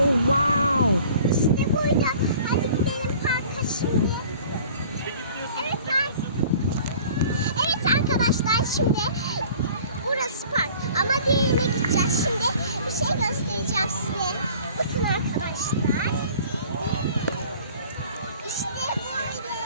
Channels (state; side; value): inverted; both; correlation -0.48